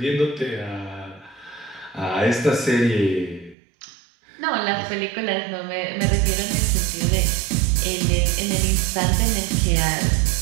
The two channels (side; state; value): left; drops out; at 3.6 s